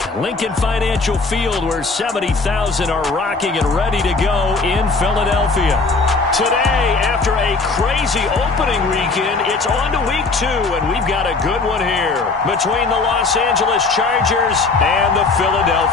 Lincoln Financial Field, where 70,000 are rocking and ready to go in Philadelphia. Today, after a crazy opening weekend, it's on to week 2, and we've got a good one here between the Los Angeles Chargers and the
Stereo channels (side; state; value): right; quieter; 3.9 dB